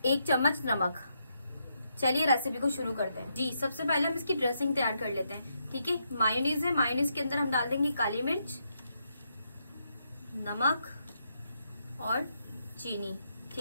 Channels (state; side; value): inverted; both; correlation -0.80